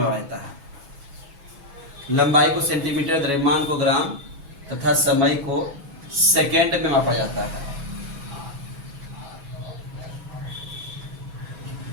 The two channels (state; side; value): late; left; 6.1 ms